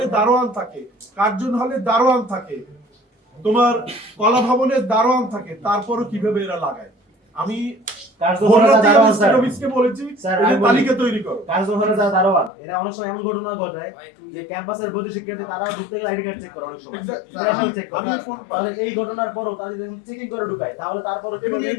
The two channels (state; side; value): drops out; right; at 12.5 s